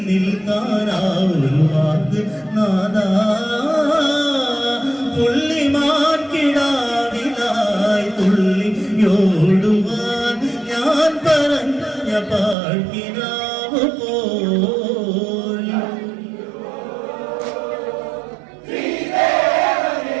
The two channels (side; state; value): left; drops out; at 12.6 s